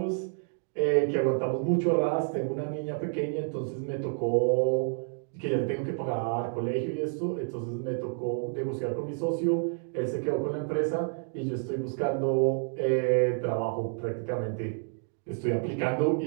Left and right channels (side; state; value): left; silent; 58 dB below the other